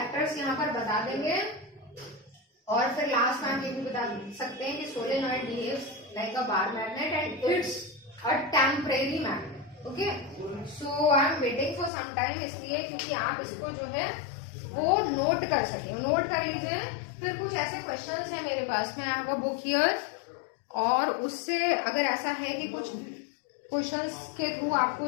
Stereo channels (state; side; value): drops out; right; at 11.9 s